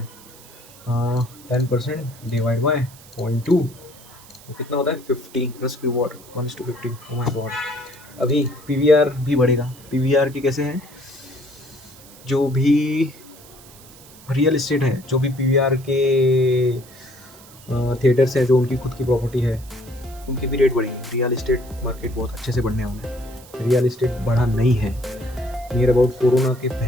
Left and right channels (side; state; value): right; noise; hiss, 22 dB below the sound